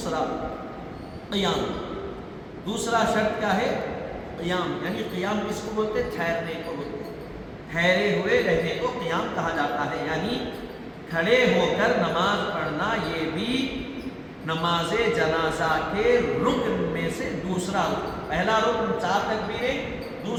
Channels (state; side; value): identical; both; correlation 1.00